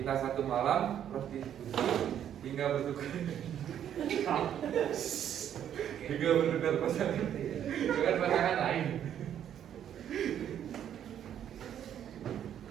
satu malam, prostitusi, hingga bertukar pasangan dengan pasangan lain.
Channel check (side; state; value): left; quieter; 9.9 dB